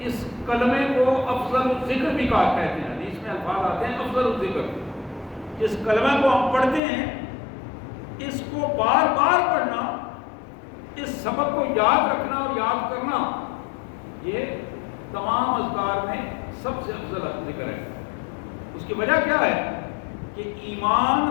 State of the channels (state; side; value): drops out; right; at 6.8 s